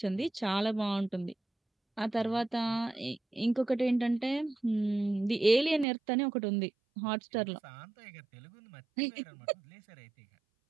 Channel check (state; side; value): drops out; left; at 5.9 s